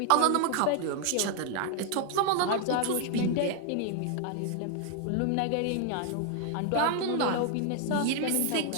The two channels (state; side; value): different; both; correlation 0.00